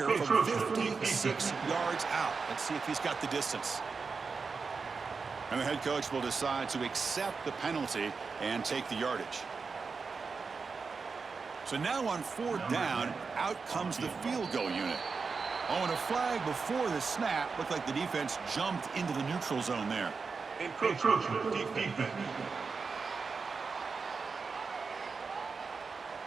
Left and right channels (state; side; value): quieter; left; 4.9 dB